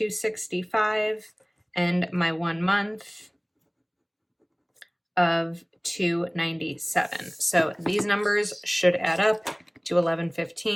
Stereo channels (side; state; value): both; identical; correlation 1.00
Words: and my 1 month of 297. So these numbers should add up to